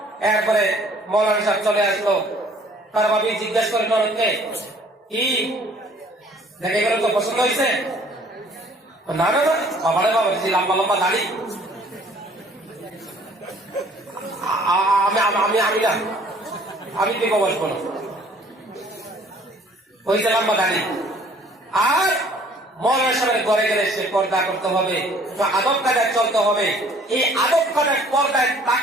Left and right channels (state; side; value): normal; both; correlation 0.56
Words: এরপরে মৌলানা সাহেব চলে আসলো, তার ভাবি জিজ্ঞেস করেন অনেককে, কি দেখে গেল, তো পছন্দ হয়েছে? না না না, বাবারে বাবা, লম্বা লম্বা দাড়ি, আমি না, আমি বিবাহ বসবো না, হয়েছে লম্বা দাড়ি। আর মৌলানা সাহেবের ঘরে গেলে সে পর্দা করতে হবে, আদব কায়দায় চলতে হবে। এই আদব কায়দায় পর্দায়